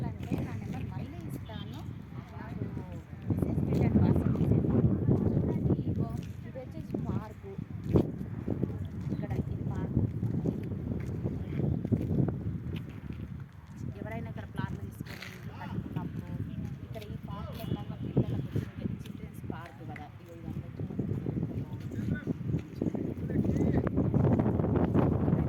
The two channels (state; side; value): identical; both; correlation 1.00